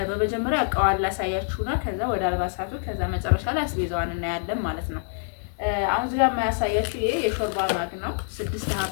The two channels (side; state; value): right; silent; 58 dB below the other